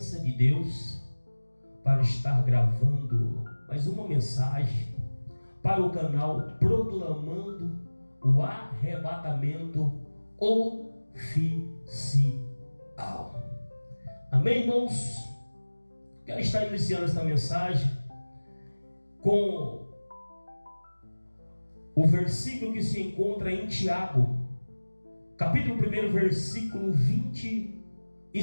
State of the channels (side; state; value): both; inverted; correlation -1.00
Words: de Deus para estar gravando mais uma mensagem para o canal Proclamando o Arrebatamento Oficial. Amém, irmãos? Quero estar iniciando esta mensagem com o versículo que se encontra em Tiago, capítulo 1, versículo